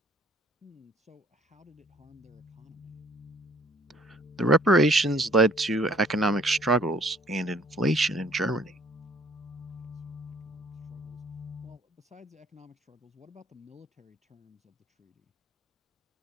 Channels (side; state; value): both; normal; correlation 0.59